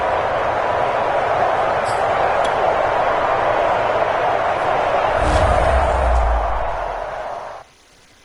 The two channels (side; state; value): both; identical; correlation 1.00